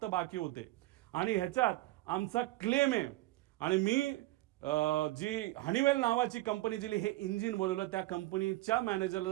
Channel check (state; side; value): quieter; left; 18.3 dB